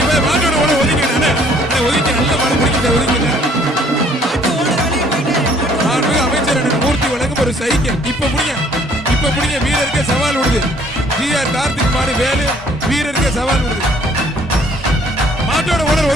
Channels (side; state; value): both; normal; correlation 0.60